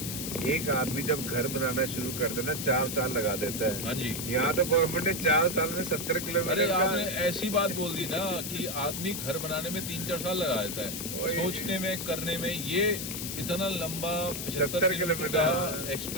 एक आदमी जब घर बनाना शुरू करता है ना 4 साल लगा देता है। हाँ जी। यहाँ तो गवर्नमेंट ने 4 साल में 70 किलोमीटर। अरे आपने ऐसी बात बोल दी ना कि आदमी घर बनाने में 3-4 साल लगा देता है, सोचने में, करने में। ये इतना लंबा 75 किलोमीटर का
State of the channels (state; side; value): noise; left; hiss, 5 dB below the sound